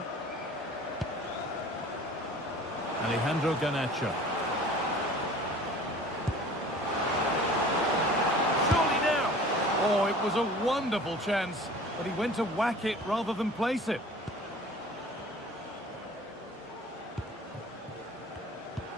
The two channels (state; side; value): normal; both; correlation 0.45